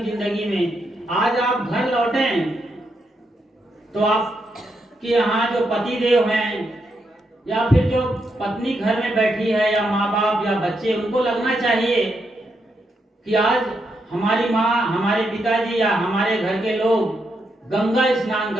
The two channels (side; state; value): both; normal; correlation 0.81